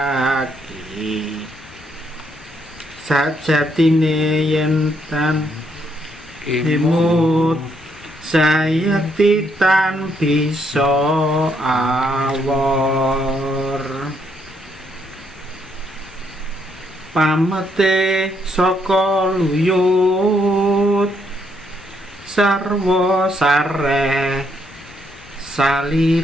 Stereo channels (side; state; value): both; normal; correlation 0.74